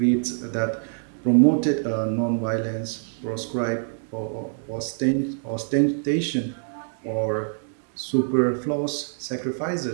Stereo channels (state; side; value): silent; left; digital silence